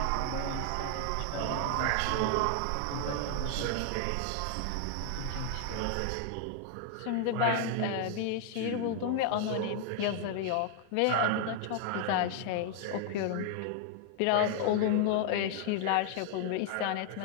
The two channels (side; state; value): both; different; correlation 0.00